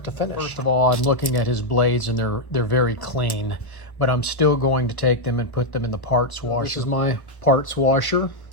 to finish. First of all, I'm looking at his blades and they're very clean, but I'm still going to take them and put them in the parts washer. This is my parts washer.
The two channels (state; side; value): late; right; 1.1 ms